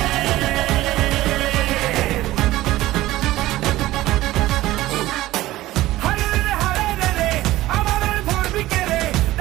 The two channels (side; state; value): left; quieter; 16.5 dB